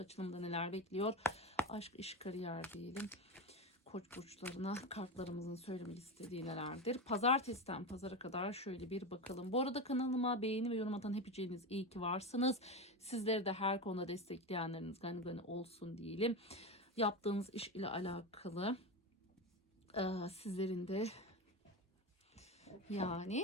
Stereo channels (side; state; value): both; normal; correlation 0.19